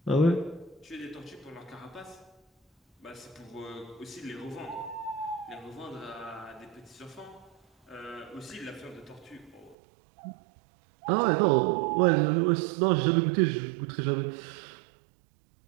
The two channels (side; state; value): left; drops out; at 9.8 s